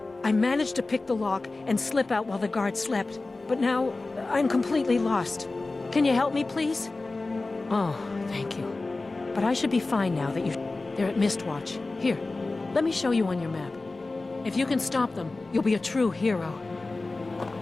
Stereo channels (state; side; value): quieter; right; 3.3 dB